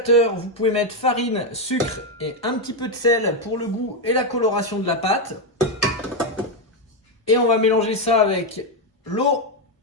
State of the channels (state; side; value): normal; both; correlation 0.05